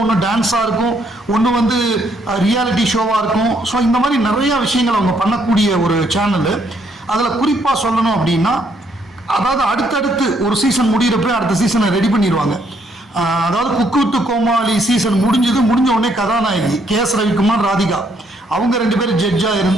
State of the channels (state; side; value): normal; both; correlation 0.70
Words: ஒன்று டான்ஸாக இருக்கும், ஒன்று வந்து ரியாலிட்டி ஷோவாக இருக்கும். ஸோ இந்த மாதிரி நிறையா விஷயங்கள் அவங்க பண்ணக்கூடிய ஒரு சேனலு. அதில் குறிப்பாக சொல்லணும் அப்படின்னா, அதாவது அடுத்தடுத்து ஒரு சீசன் முடிகிறப்ப அடுத்த சீசனை ரெடி பண்ணிடுவாங்க. அதாவது குக்கு வித்து கோமாளி சீசன் முடிஞ்ச உடனே கதாநாயகி KS ரவிக்குமார், ராதிகா அவங்க 2 பேரும் ஜட்ஜாக